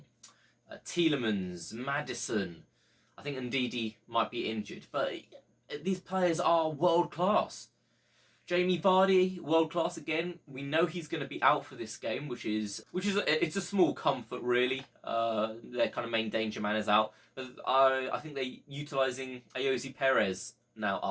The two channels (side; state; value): both; identical; correlation 1.00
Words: Maddison. I think Ndidi might be injured, but these players are world class. Jamie Vardy, world class again. We know he's going to be out for this game, which is it's a small comfort really. Their kind of main danger man is out, but I think they're utilising Alioski Perez now